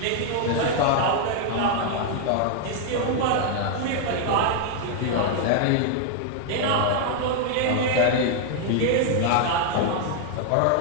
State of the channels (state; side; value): different; both; correlation 0.00